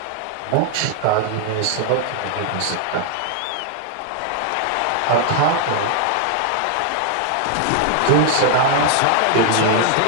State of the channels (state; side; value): different; both; correlation 0.00